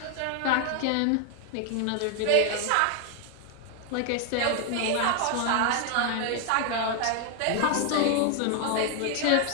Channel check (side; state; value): both; different; correlation 0.01